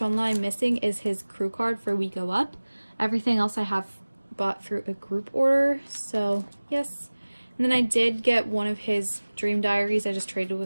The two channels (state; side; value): inverted; both; correlation -1.00